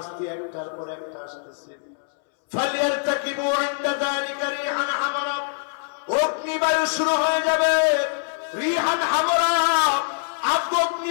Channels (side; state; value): right; silent; 63 dB below the other